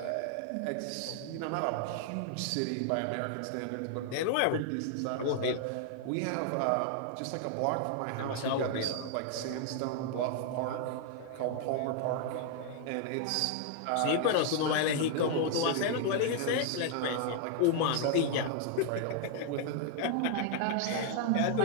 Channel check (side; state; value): both; different; correlation 0.00